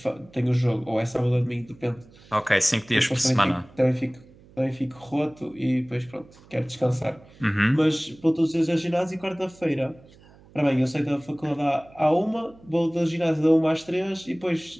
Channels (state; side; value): noise; right; hum, 25 dB below the sound